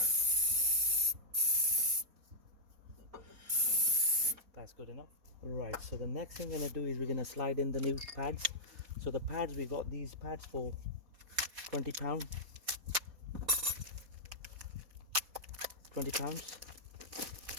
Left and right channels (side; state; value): left; late; 4.2 ms